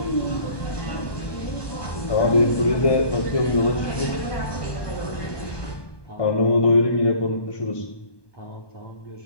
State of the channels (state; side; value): late; right; 1.2 ms